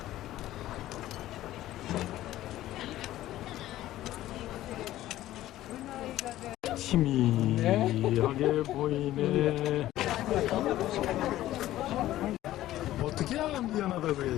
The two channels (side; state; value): right; quieter; 14.5 dB